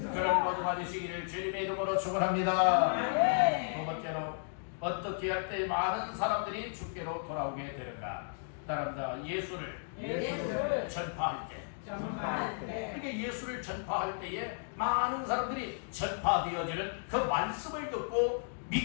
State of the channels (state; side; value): silent; right; digital silence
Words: 그런 모두가 되시기를 주님의 이름으로 축원합니다. 두 번째로, 어떻게 할 때 많은 사람들이 주께로 돌아오게 되는가? 따라합니다. 예수를 전파할 때. 그러니까 예수를 전파할 때에 많은 사람들이 전파되어지는 그 말씀을 듣고